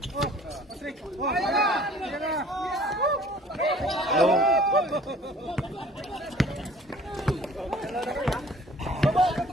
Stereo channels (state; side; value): normal; both; correlation 0.51